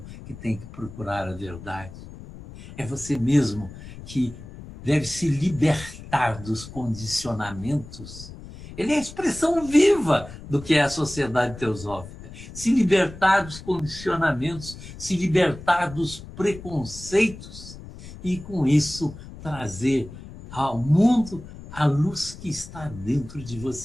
que tem que procurar a verdade. É você mesmo que deve se libertar dos condicionamentos. Ele é a expressão viva do que é a sociedade teosófica. Se libertar dos condicionamentos, se libertar dos preconceitos e, com isso, trazer ao mundo a luz que está dentro de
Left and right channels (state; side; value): noise; left; rumble, 15 dB below the sound